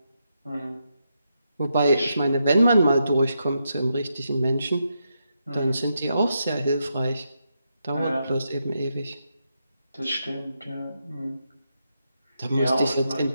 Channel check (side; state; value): both; inverted; correlation -0.83